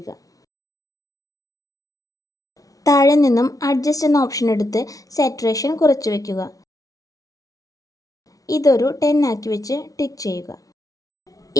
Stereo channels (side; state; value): right; late; 0.18 ms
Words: താഴെ നിന്നും അഡ്ജസ്റ്റ് എന്ന ഓപ്ഷൻ എടുത്ത് സാച്ചുറേഷൻ കുറച്ച് വയ്ക്കുക. ഇതൊരു 10 ആക്കി വെച്ച് ടിക്ക് ചെയ്യുക.